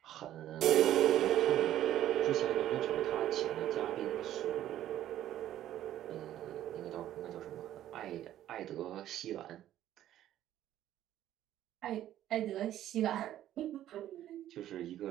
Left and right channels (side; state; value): left; quieter; 12.5 dB